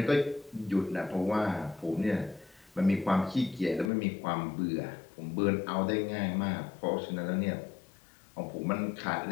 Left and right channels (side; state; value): right; drops out; at 3.9 s